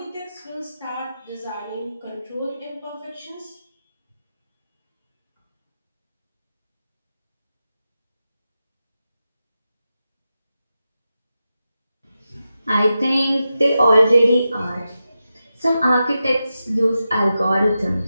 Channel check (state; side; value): inverted; both; correlation -0.91